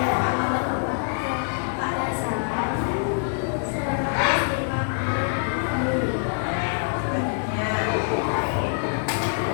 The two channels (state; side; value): silent; right; digital silence